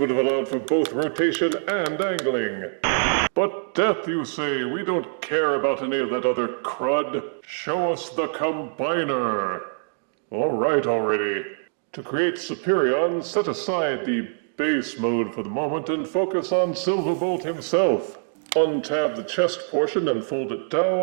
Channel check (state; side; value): silent; left; digital silence